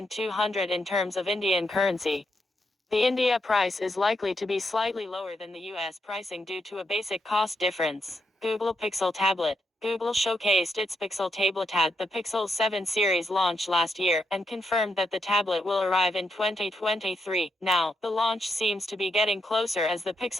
in terms of Indian currency. The India price is likely to be slightly lower than the US pricing due to a basic cost difference. Google Pixel Tablet. Google showcased its Pixel tablet at the Pixel 7 series launch last year and confirmed that the tablet will arrive in 2023. Now, the launch seems to be getting closer as the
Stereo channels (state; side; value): normal; both; correlation 0.81